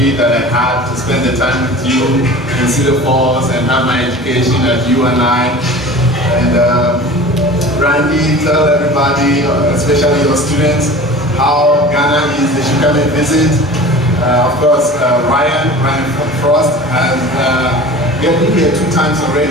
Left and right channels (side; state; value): both; normal; correlation 0.39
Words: that I had to spend the time with you in Cedar Falls and have my education at UNI. And Randy, tell everybody, especially your students, how Ghana is. They should come and visit. Of course, Ryan Frost has been here 2 times